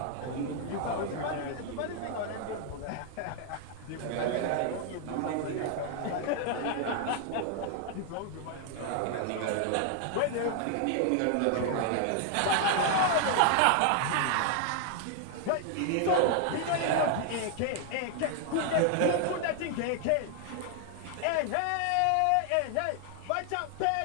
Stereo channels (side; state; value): both; different; correlation 0.00